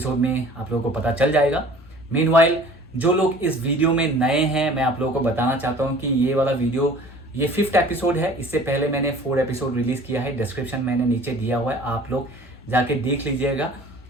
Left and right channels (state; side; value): normal; both; correlation 0.47